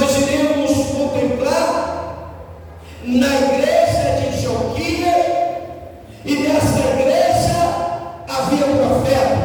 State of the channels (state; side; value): identical; both; correlation 1.00